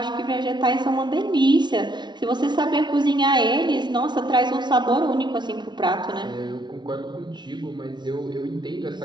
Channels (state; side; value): late; left; 0.21 ms